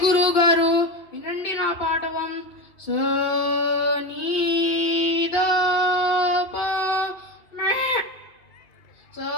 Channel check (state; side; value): late; right; 2.8 ms